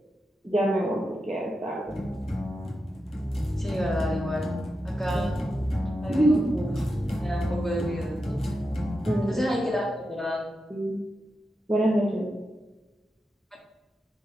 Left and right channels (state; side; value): normal; both; correlation 0.88